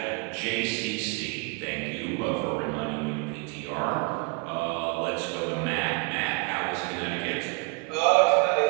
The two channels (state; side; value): quieter; left; 31.3 dB